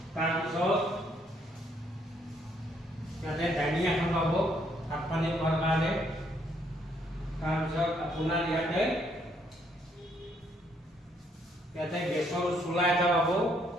তাৰপিছত ইয়াতে ডাইনিং এখন পাব ভাত পানী খোৱাৰ কাৰণে। তাৰপিছত আপোনাৰ ইয়াতে গেছৰ চুলা এটা পাব,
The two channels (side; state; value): both; normal; correlation 0.70